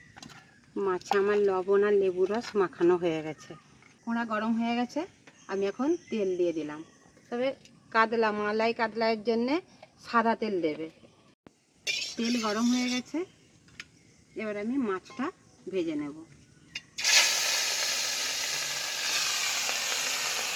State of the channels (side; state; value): both; identical; correlation 1.00